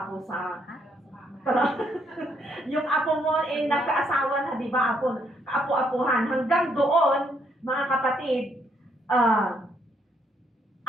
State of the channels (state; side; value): normal; both; correlation 0.72